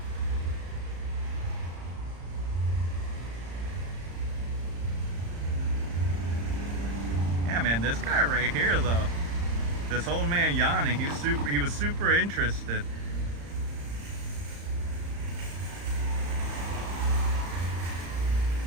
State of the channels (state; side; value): late; left; 35 ms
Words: Yeah, man, this guy right here though, this old man yawning, he was super interested.